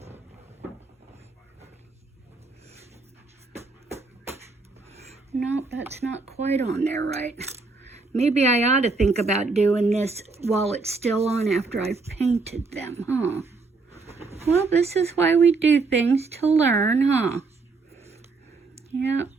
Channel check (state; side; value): quieter; left; 4.0 dB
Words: No, that's not quite on there right. Maybe I ought to think about doing this while it's still on after I've painted them, huh? Well, this is why we do things, to learn, huh? Yep.